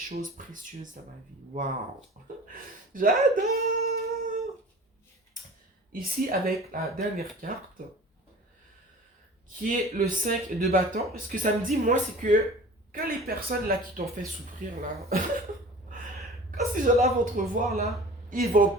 précieuses dans ma vie. Waouh! J'adore! Ici, avec la dernière carte, qui est le 5 de bâton, ce que ça me dit, moi, c'est que quand les personnes là qui t'ont fait souffrir, là, quand ces gens-là vont te revoir, là, ils vont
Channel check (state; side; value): normal; both; correlation 0.41